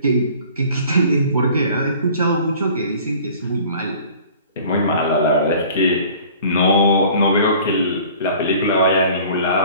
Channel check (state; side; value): inverted; both; correlation -0.48